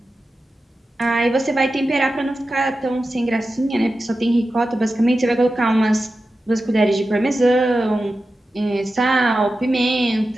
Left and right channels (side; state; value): both; normal; correlation 0.92